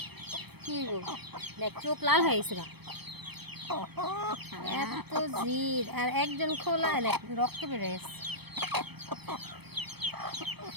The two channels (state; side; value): late; left; 0.97 ms